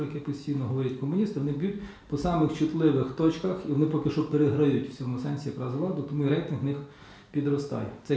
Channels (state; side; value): identical; both; correlation 1.00